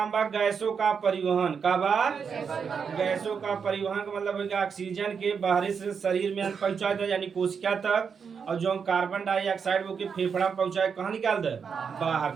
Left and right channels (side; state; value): left; quieter; 6.3 dB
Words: बा गैसों का परिवहन। का बा? गैसों का परिवहन का मतलब है कि ऑक्सीजन के बाहरी से शरीर में पहुंचा दे यानी कोशिका तक, और जो कार्बन डाइऑक्साइड वो के फेफड़ा में पहुंचाए कहाँ निकाल दे? बाहर